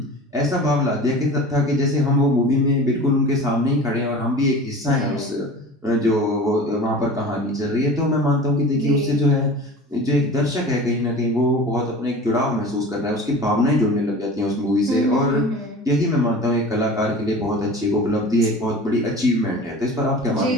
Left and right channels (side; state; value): both; normal; correlation 0.37